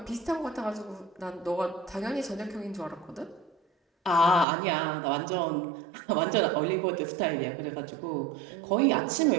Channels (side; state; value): left; drops out; at 4.5 s